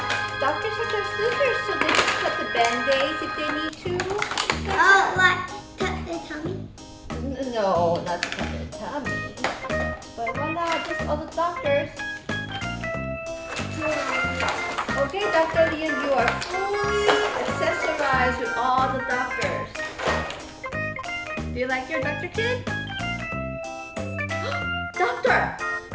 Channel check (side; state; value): both; identical; correlation 1.00